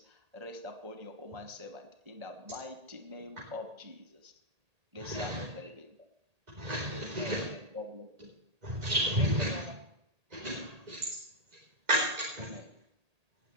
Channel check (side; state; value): left; late; 1.8 ms